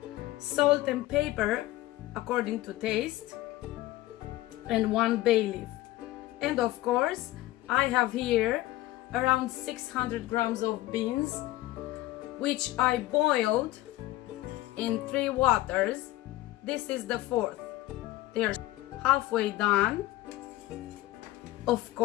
salt and pepper according to taste, and 1 bay leaf. And of course, I have here around 600 grams of beans, which I boiled in 3 waters. This is the 4th. They are halfway done. Of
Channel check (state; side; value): quieter; right; 16.8 dB